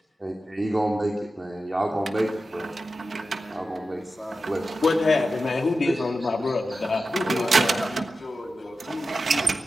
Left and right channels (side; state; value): both; normal; correlation 0.92